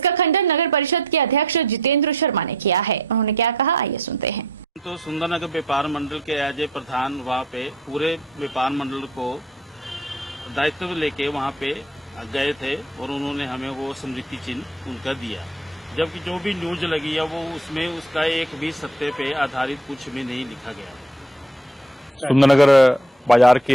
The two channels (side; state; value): both; normal; correlation 0.55